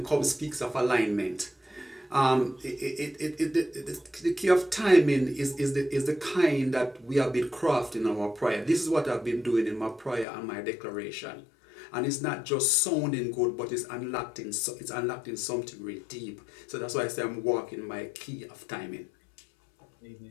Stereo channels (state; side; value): drops out; right; at 10.2 s